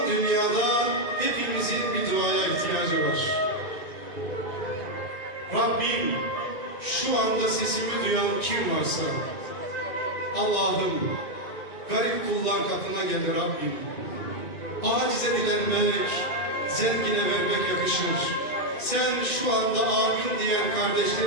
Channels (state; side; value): late; right; 2.4 ms